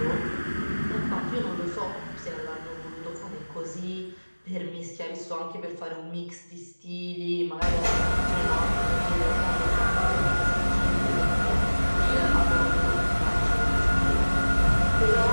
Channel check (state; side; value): inverted; both; correlation -1.00